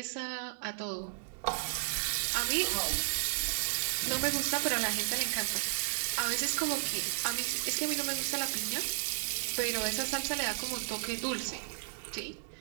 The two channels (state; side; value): silent; left; 55 dB below the other